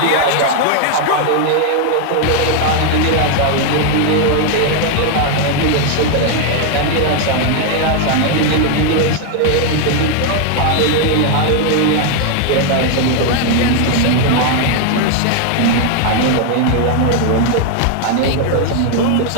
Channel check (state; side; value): different; both; correlation 0.00